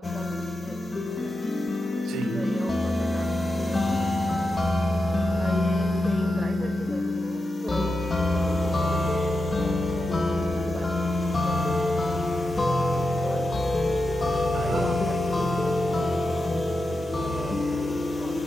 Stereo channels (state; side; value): normal; both; correlation 0.89